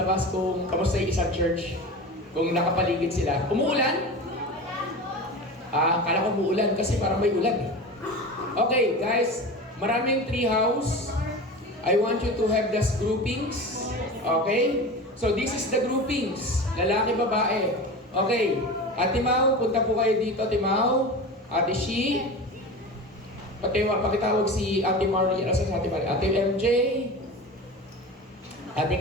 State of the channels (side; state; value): both; normal; correlation 0.31